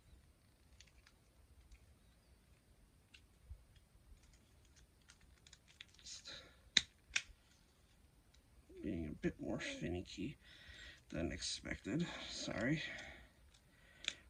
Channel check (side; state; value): both; identical; correlation 1.00